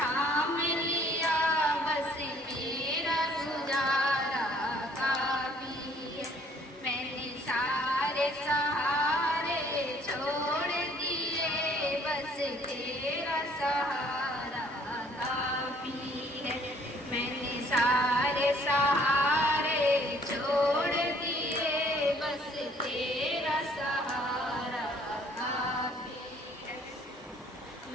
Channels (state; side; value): normal; both; correlation 0.60